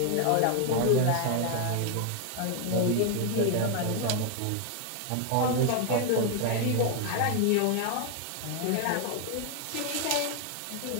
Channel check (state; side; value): different; both; correlation 0.01